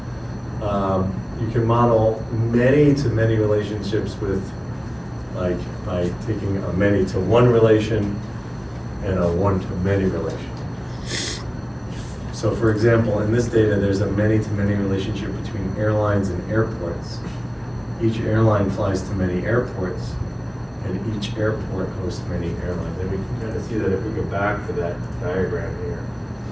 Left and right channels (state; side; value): identical; both; correlation 1.00